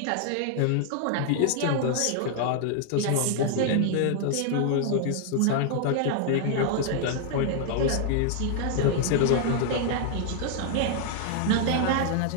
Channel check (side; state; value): both; different; correlation 0.00